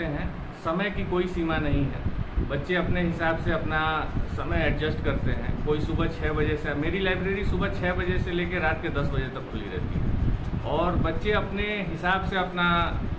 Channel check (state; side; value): identical; both; correlation 1.00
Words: हैं, समय की कोई सीमा नहीं है। बच्चे अपने हिसाब से अपना समय एडजस्ट करते हैं। कोई सुबह 6 बजे से, मेरी लाइब्रेरी सुबह 6 बजे से लेकर रात के 10 बजे तक खुली रहती है और बच्चे अपने हिसाब से अपना